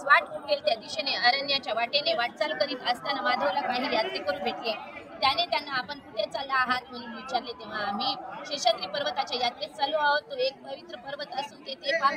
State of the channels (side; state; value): both; identical; correlation 1.00